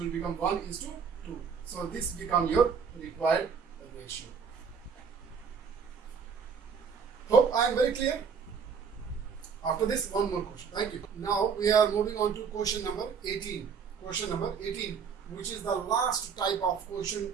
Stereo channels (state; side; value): quieter; left; 6.3 dB